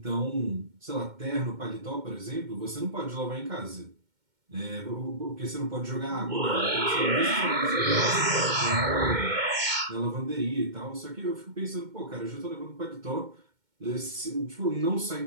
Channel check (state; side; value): late; left; 2.1 ms